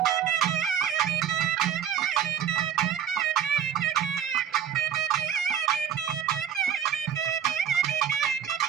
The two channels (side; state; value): left; quieter; 8.8 dB